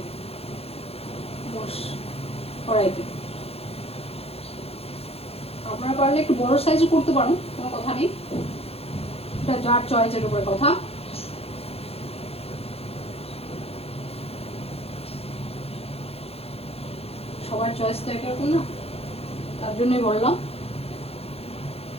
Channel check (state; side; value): late; right; 0.29 ms